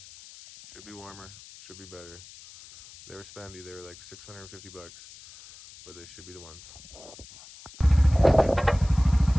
Should be warmer, should be better. They were spendy, they were like 650 bucks, but they should be the ones.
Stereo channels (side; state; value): left; noise; hiss, 19 dB below the sound